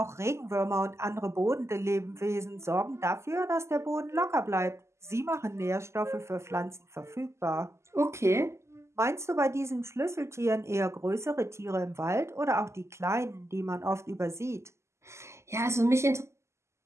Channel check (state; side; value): late; left; 0.13 ms